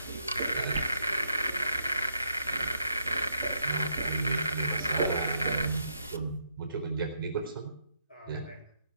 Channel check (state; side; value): inverted; both; correlation -0.77